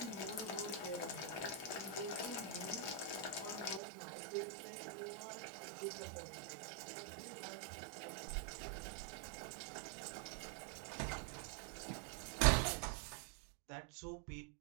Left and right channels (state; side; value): drops out; left; at 3.8 s